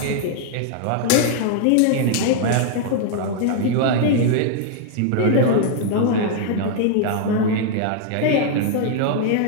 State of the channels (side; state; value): both; different; correlation -0.01